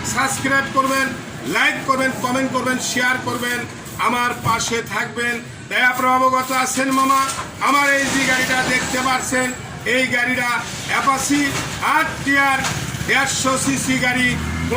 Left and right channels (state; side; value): identical; both; correlation 1.00